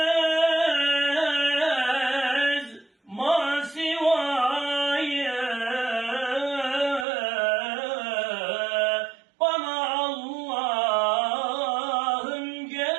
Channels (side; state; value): left; drops out; at 7.1 s